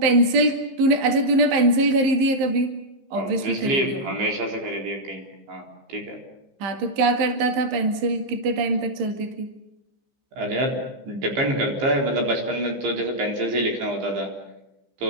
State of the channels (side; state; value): left; late; 15 ms